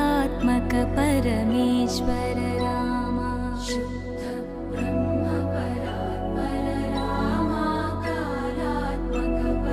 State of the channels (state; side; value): identical; both; correlation 1.00